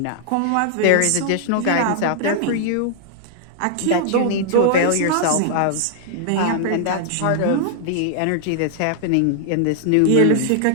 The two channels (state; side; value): different; both; correlation -0.01